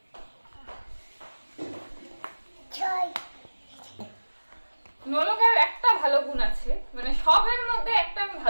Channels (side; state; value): both; inverted; correlation -1.00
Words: নলকের একটা ভালো গুণ আছে, মানে সবের মধ্যে একটা আমি